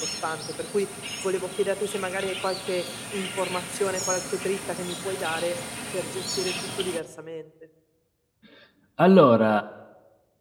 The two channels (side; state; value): both; identical; correlation 1.00